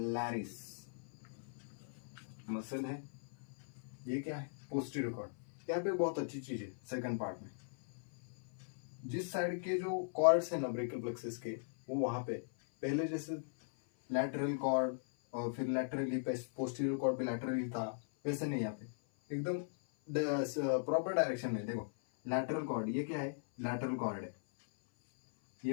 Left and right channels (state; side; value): silent; right; 52 dB below the other